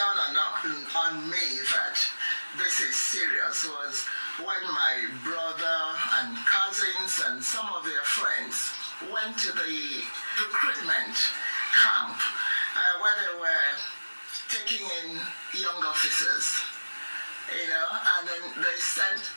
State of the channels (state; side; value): inverted; both; correlation -1.00